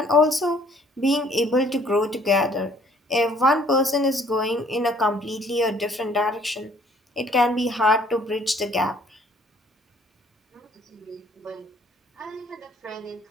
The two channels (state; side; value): normal; both; correlation 0.60